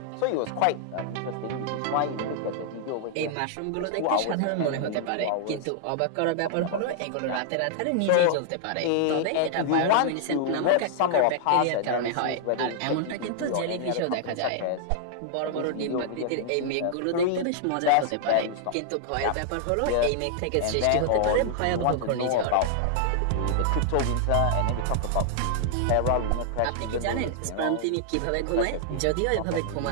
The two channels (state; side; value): different; both; correlation -0.01